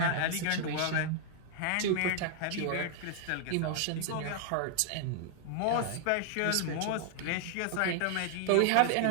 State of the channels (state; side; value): different; both; correlation 0.00